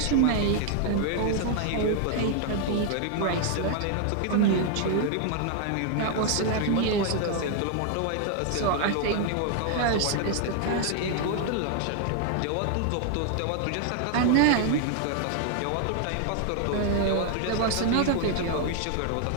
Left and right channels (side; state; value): both; different; correlation 0.00